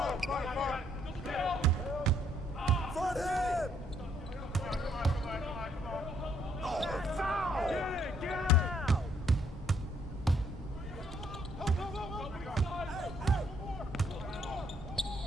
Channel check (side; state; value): both; normal; correlation 0.68